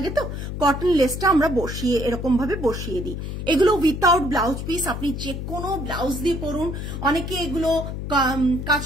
তো কটন লেসটা আমরা বসিয়ে এরকম ভাবে বসিয়ে দিই। এগুলো উইথাউট ব্লাউজ পিস, আপনি যে কোনো ব্লাউজ দিয়ে পরুন। অনেকে এগুলো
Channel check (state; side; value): noise; left; hum, 6 dB below the sound